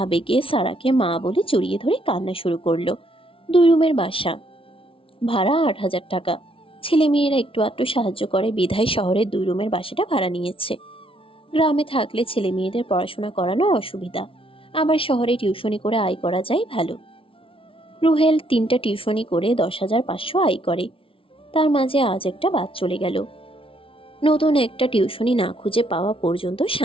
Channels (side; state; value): right; late; 0.26 ms